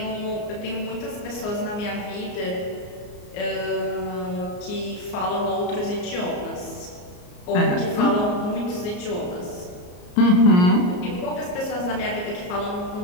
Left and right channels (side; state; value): right; late; 34 ms